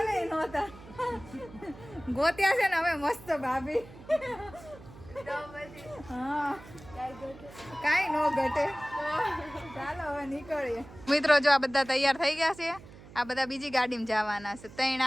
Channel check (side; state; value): right; noise; hum, 19 dB below the sound